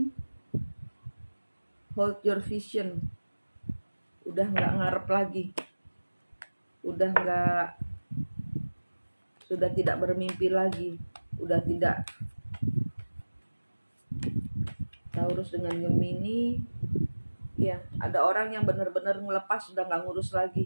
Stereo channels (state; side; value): inverted; both; correlation -1.00